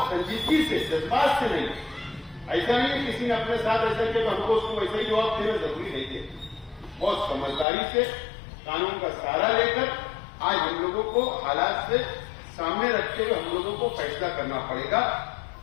संजीदगी से, जज्बात से नहीं, ऐसा नहीं किसी ने अपने साथ ऐसा किया तो हमको उसको वैसा ही जवाब देना जरूरी नहीं है। बहुत समझदारी से, कानून का सहारा लेकर आज हम लोगों को हालात से सामने रखते हुए हम लोगों को फैसला करना पड़ेगा,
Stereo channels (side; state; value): right; drops out; at 7.7 s